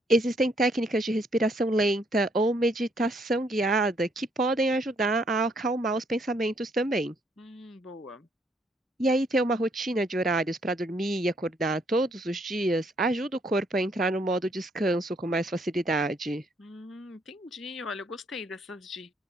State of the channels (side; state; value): both; normal; correlation 0.70